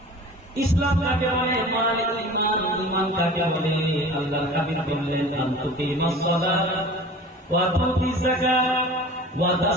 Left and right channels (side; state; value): both; normal; correlation 0.40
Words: ইসলাম কাকে বলে, মাল ঈমান, ঈমান কাকে বলে? আল্লাহর হাবিব বললেন, আন তুকিমাস সালাত ওয়া তুতিজ যাকাত ওয়া